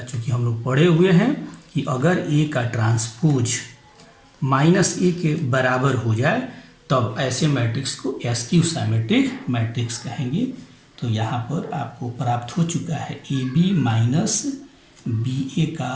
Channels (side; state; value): both; identical; correlation 1.00